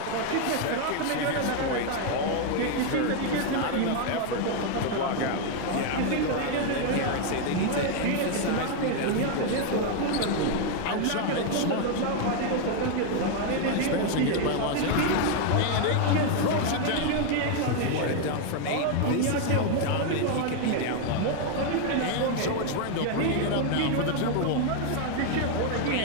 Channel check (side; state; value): both; different; correlation 0.00